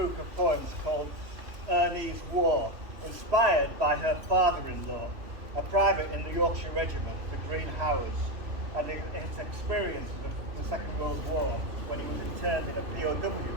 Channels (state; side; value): late; left; 3.0 ms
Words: of poems called Ernest War, inspired by her father-in-law, a private in the Yorkshire Regiment, the Green Howards, and his experience of the Second World War when he was interned in a POW